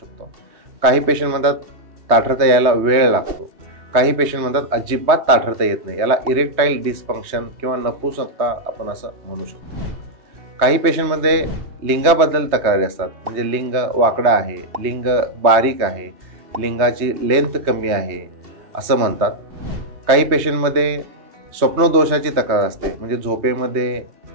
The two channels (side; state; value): left; late; 3.2 ms